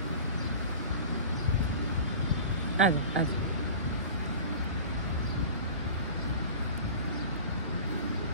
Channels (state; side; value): inverted; both; correlation -0.37